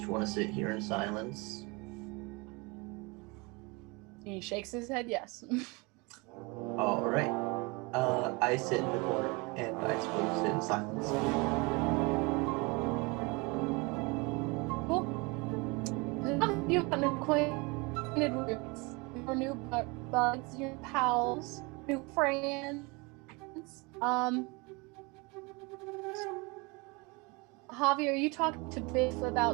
want to sit here in silence? He shakes his head yes. All right. I sit in the corner, and I suppose sit in silence. Cool. You've been acquainted with your new buds, your pals, new friends. Javi, are you talking to Biff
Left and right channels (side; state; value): left; quieter; 27.5 dB